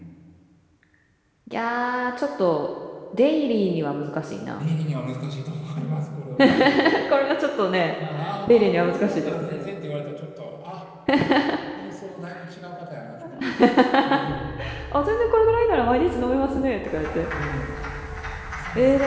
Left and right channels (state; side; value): identical; both; correlation 1.00